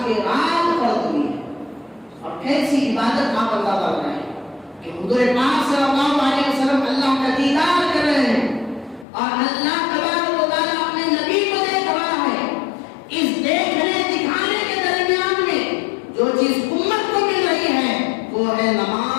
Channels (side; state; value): right; drops out; at 9.1 s